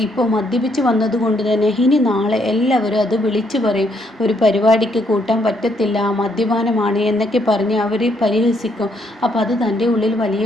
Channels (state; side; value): normal; both; correlation 0.72